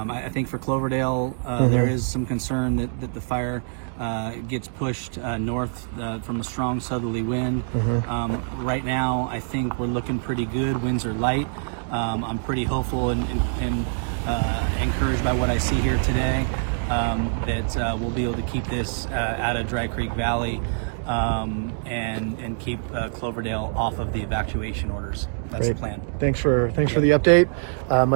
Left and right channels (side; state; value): left; silent; 62 dB below the other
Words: think for Cloverdale, there is some concern that the fire gets pushed north from a strong southerly wind. Right now, I think we're looking pretty good. Winds are light. I'm pretty hopeful and encouraged by what I see here today that we'll be able to keep this out of Dry Creek Valley and keep Cloverdale off of the evacuation orders. That's Great. the plan. Thanks for the update.